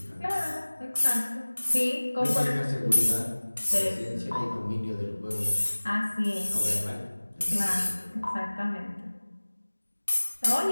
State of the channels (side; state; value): both; inverted; correlation -1.00